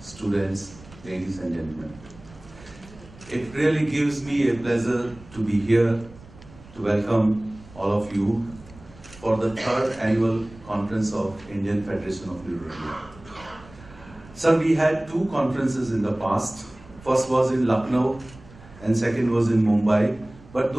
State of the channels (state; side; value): noise; right; rumble, 21 dB below the sound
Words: students, ladies and gentlemen. It really gives me a pleasure to be here to welcome all of you for the third annual conference of Indian Federation of Neurology. Sir, we had two conferences in the past. First was in Lucknow and second was in Mumbai. But